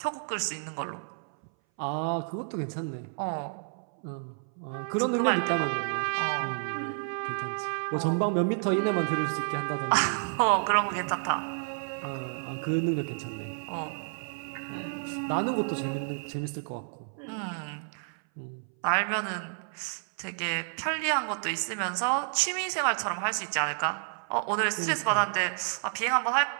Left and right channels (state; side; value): silent; left; 58 dB below the other